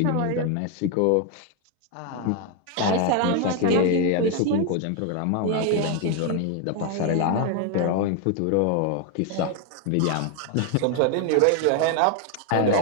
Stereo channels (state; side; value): different; both; correlation 0.01